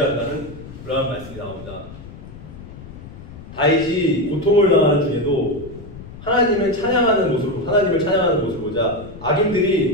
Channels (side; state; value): left; noise; rumble, 15 dB below the sound